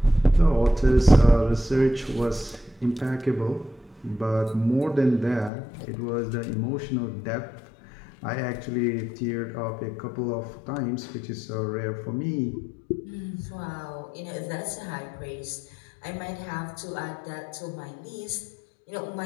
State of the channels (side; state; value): right; drops out; at 5.5 s